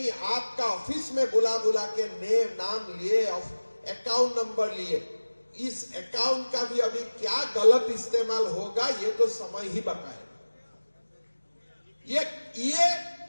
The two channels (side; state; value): both; inverted; correlation -1.00